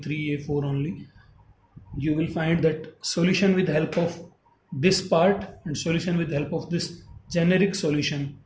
a4 only. You will find that solution with help of this part and solution with help of this generic solution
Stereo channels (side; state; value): both; identical; correlation 1.00